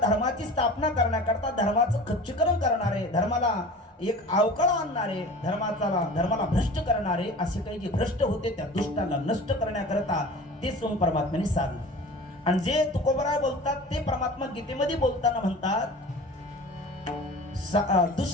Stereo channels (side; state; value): both; normal; correlation 0.39